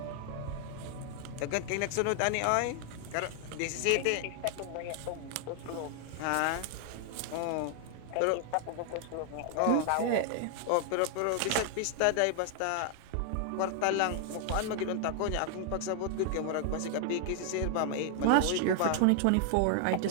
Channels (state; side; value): different; both; correlation 0.00